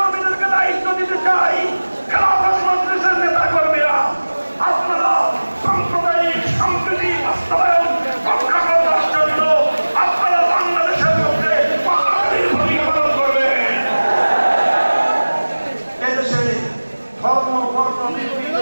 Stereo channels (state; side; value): inverted; both; correlation -1.00